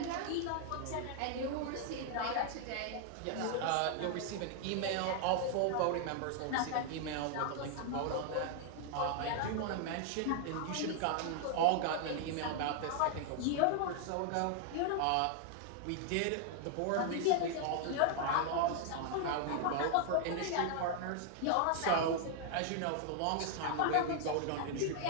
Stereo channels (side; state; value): both; different; correlation 0.00